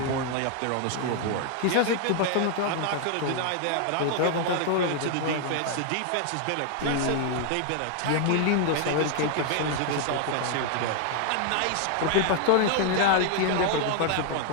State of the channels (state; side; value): different; both; correlation 0.00